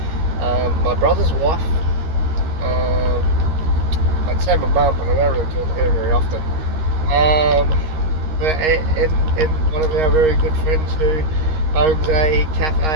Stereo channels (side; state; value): left; late; 13 ms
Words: my brother's wife. Um, I'd say my mum, but I don't really talk to her very often. Um, and one of our very good friends who owns a